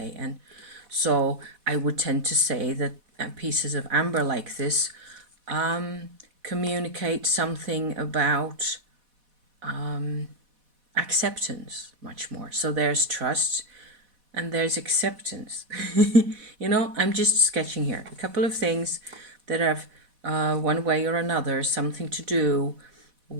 And so I would tend to say that pieces of amber like this communicate something about acceptance much more. So there's trust and there's acceptance. You know, I'm just sketching here a couple of things that have one way or another something to do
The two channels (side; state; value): left; late; 4.1 ms